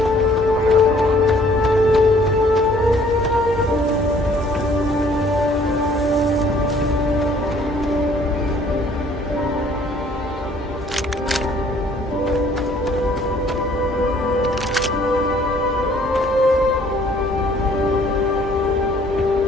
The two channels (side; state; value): both; normal; correlation 0.59